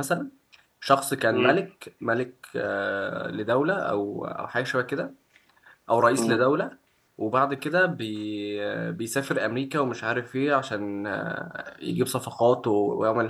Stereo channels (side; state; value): both; identical; correlation 1.00